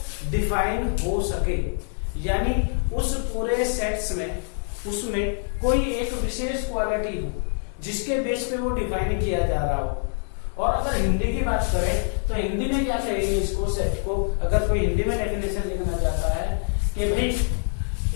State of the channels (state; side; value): silent; right; 57 dB below the other